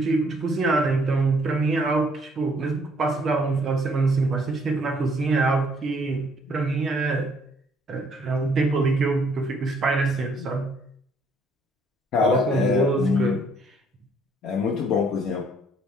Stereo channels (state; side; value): normal; both; correlation 0.66